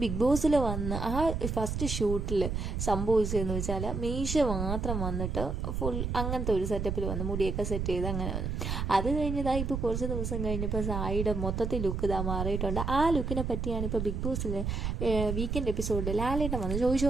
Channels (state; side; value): noise; right; rumble, 2 dB below the sound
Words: ബിഗ് ബോസിൽ വന്ന് ആ ഫസ്റ്റ് ഷൂട്ടിൽ സംഭവിച്ചതെന്ന് വെച്ചാൽ മീശ മാത്രം വന്നിട്ട് ഫുൾ അങ്ങനത്തെ ഒരു സെറ്റപ്പിൽ വന്നു, മുടിയൊക്കെ സെറ്റ് ചെയ്ത് അങ്ങനെ വന്നു. അത് കഴിഞ്ഞതാ ഇപ്പോൾ കുറച്ച് ദിവസം കഴിഞ്ഞപ്പോൾ സായിയുടെ മൊത്തത്തിൽ ലുക്ക് ഇതാ മാറിയിട്ടുണ്ട്. ആ ലുക്കിനെ പറ്റിയാണ് ഇപ്പോൾ ബിഗ് ബോസിൽ വീക്കെൻഡ് എപ്പിസോഡിൽ ലാലേട്ടൻ വന്ന്